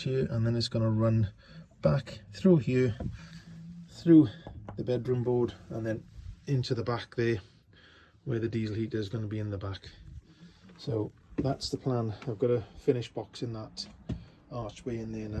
and then it's going to run back through here, through the bedroom board, and then into the back there where the diesel heater is going to be in the back. So that's the plan. I've got to finish boxing that archway in there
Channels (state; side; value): identical; both; correlation 1.00